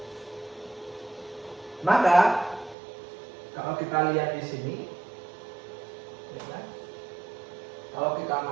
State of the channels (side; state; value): left; drops out; at 2.8 s